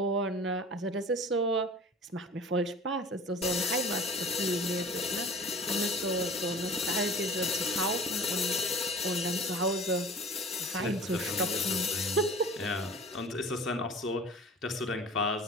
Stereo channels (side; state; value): both; normal; correlation 0.41